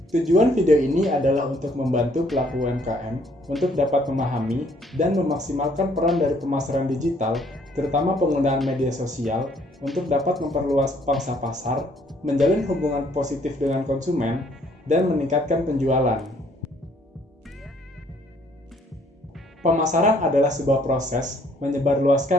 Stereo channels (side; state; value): both; normal; correlation 0.64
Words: Tujuan video ini adalah untuk membantu pelaku UMKM untuk dapat memahami dan memaksimalkan peran dari pemasaran digital, terutama penggunaan media sosial, untuk dapat memperluas pangsa pasar, menjalin hubungan positif dengan konsumen, dan meningkatkan penjualan. Pemasaran adalah sebuah proses